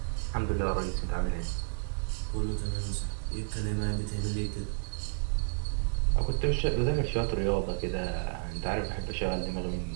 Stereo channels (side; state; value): left; silent; 57 dB below the other